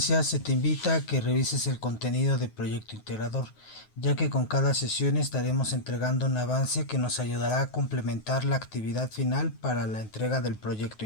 se te invita a que revises el contenido del proyecto integrador, ya que con cada sesión estaremos entregando un avance que nos ayudará a complementar la actividad final para la entrega del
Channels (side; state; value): right; late; 9.4 ms